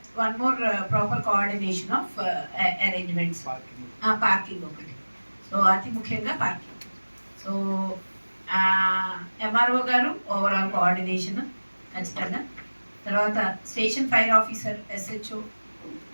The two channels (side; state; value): both; inverted; correlation -1.00